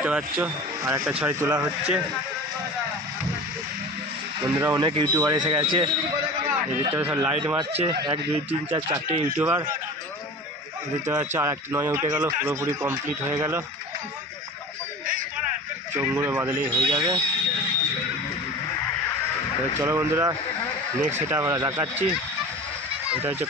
পাচ্ছ আর একটা 6 তোলা হচ্ছে। বন্ধুরা, অনেক ইউটিউবার এসে গেছে। এদিকটা সব লাইট মারছে, 1, 2, 3, 4, 4টে ইউটিউবার। দেখতে পাচ্ছ আর একটা 9 উঠে গেল, পুরোপুরি কমপ্লিট হয়ে গেল। চোখগুলো বাদলেই হয়ে যাবে। চলো বন্ধুরা, নেক্সট সেটা আমরা দেখাচ্ছি। এটা হচ্ছে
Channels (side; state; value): both; normal; correlation 0.35